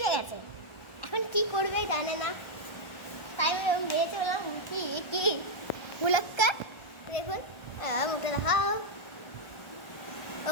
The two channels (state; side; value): late; right; 1.4 ms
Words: গেছে। এখন কি করবে জানে না, তাই আমি মেয়ে চললাম। কি মুলাক্কা দেখুন, মুখে দেখাও। ও